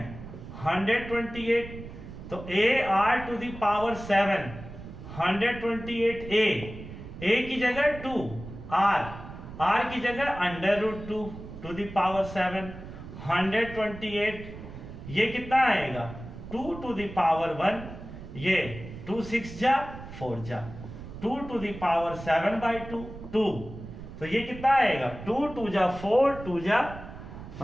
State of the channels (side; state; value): right; noise; rumble, 13 dB below the sound